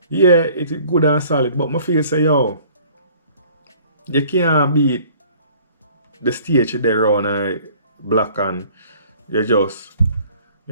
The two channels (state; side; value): inverted; both; correlation -0.54